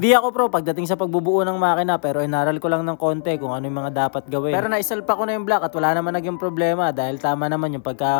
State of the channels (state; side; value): silent; right; digital silence